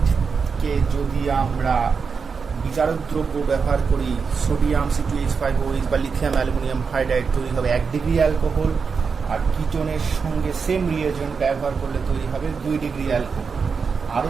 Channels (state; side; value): quieter; left; 5.5 dB